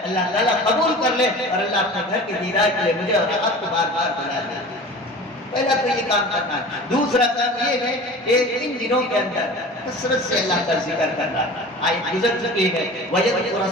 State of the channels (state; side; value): normal; both; correlation 0.38